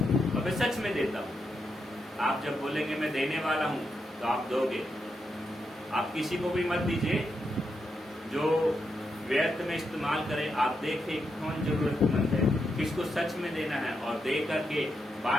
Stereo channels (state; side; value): normal; both; correlation 0.83